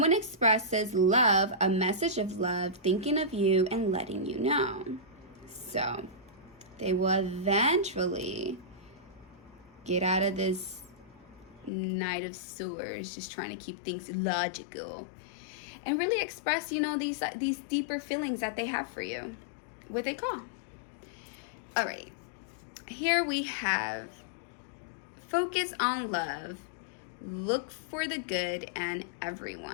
expresses love, a message of love, thinking of you and letting you know. So they will eventually get out of this Knight of Swords, just trying to keep things logical, and really express, you know, these deeper feelings that they have for you. What they call. All right. Here we have focus on love. Look for the good in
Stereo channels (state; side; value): drops out; right; at 11.7 s